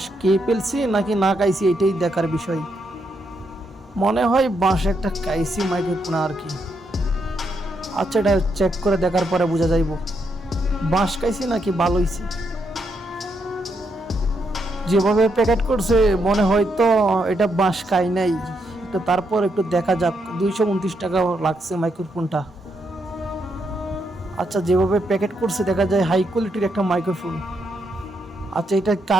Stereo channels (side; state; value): both; normal; correlation 0.79